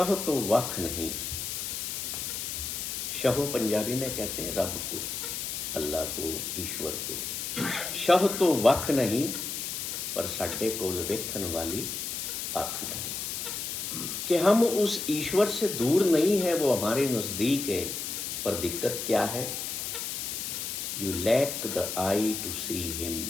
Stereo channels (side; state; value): left; noise; hiss, 4 dB below the sound